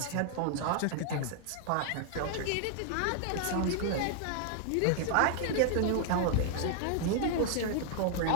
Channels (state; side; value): different; both; correlation 0.00